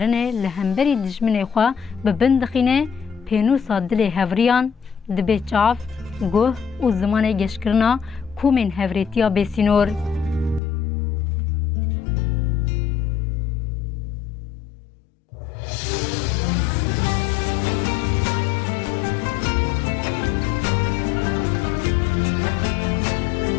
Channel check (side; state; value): right; drops out; at 10.6 s